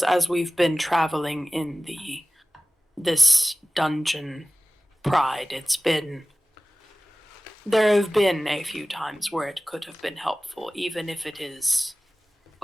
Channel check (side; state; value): both; normal; correlation 0.98